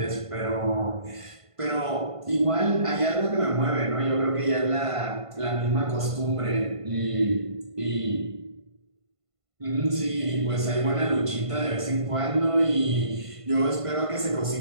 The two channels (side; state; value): left; late; 1.5 ms